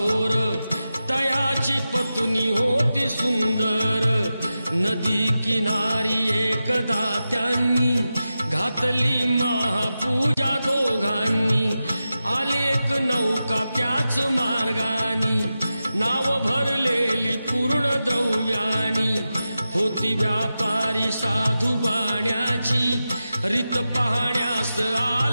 तयाची पत्नी होती सुंदर। नदी किनारी एकदा त्यांनी घातली महापूजा दोघांनी। आली एक नौका त्याच मार्गानी, नाव भरलेली पूर्ण द्रव्यानी। होती व्यापारी साधू बाण्याची, रीत पाहण्यास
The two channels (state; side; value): inverted; both; correlation -0.92